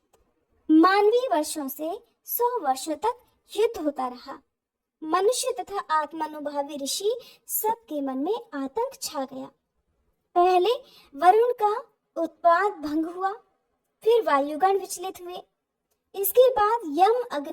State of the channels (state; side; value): identical; both; correlation 1.00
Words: मानवीय वर्षों से 100 वर्षों तक युद्ध होता रहा। मनुष्य तथा आत्मानुभावी ऋषि सबके मन में आतंक छा गया। पहले वरुण का उत्पात भंग हुआ, फिर वायुगण विचलित हुए। इसके बाद यम,